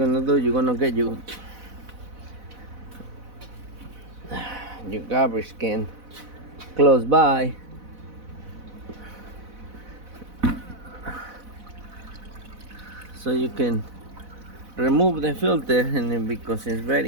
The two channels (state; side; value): late; left; 4.0 ms